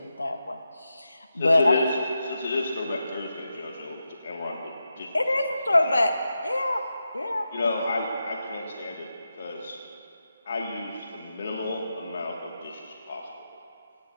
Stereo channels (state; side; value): inverted; both; correlation -0.89